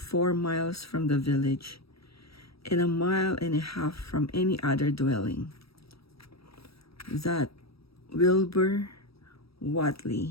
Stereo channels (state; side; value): late; right; 0.76 ms